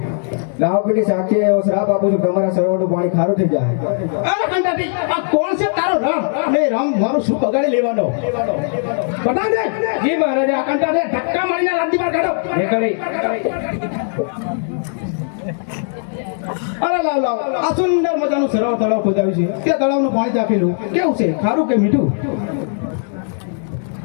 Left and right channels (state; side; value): silent; right; digital silence